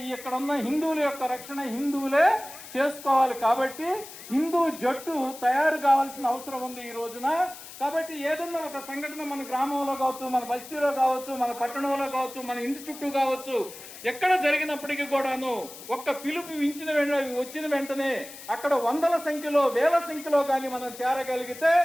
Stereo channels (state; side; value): noise; left; hiss, 15 dB below the sound